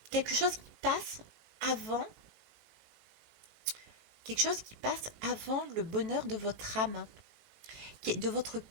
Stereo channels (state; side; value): late; left; 18 ms